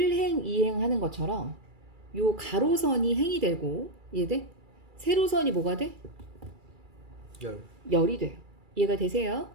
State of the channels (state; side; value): late; left; 2.3 ms